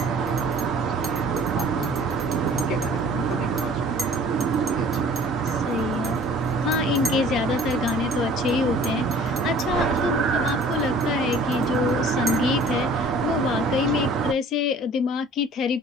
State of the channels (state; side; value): normal; both; correlation 0.50